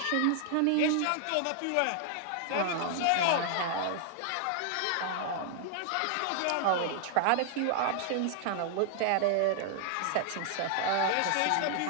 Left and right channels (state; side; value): different; both; correlation 0.00